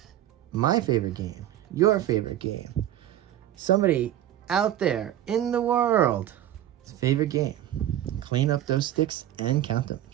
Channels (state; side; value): quieter; left; 12.4 dB